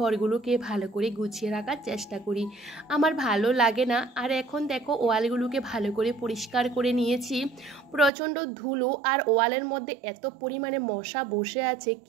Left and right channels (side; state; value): left; drops out; at 8.1 s